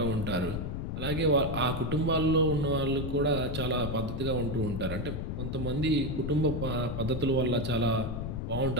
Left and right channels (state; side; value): noise; left; rumble, 4 dB below the sound